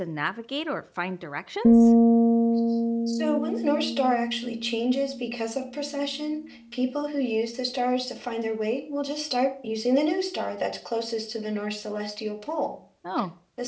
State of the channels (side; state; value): both; identical; correlation 1.00